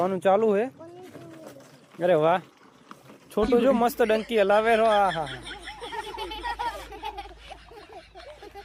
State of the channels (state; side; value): identical; both; correlation 1.00